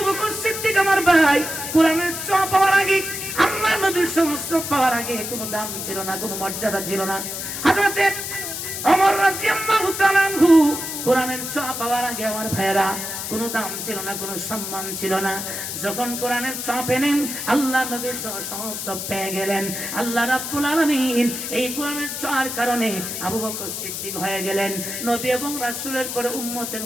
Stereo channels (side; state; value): left; noise; hiss, 5 dB below the sound